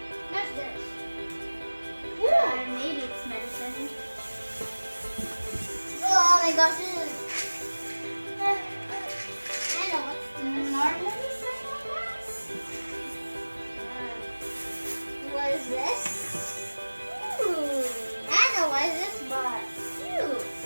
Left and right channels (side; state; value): both; inverted; correlation -1.00